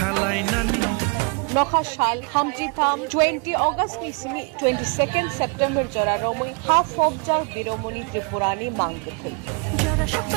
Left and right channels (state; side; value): quieter; left; 33.5 dB